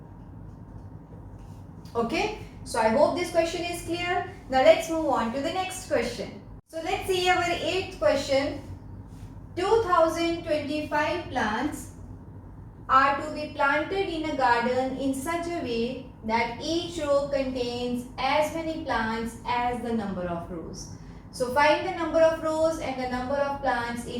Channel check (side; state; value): both; identical; correlation 1.00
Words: Okay. So I hope this question is clear. Now let's move on to the next question. So let's see our 8th question. 2025 plants are to be planted in a garden in such a way that each row contains as many plants as the number of rows. So find the number of rows and the number of plants